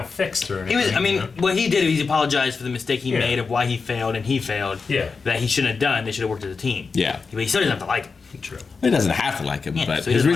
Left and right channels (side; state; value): right; quieter; 4.8 dB